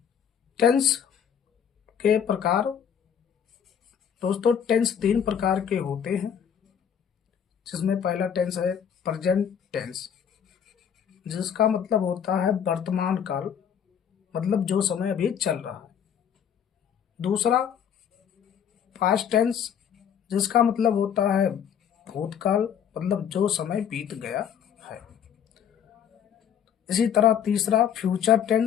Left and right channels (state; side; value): quieter; right; 8.4 dB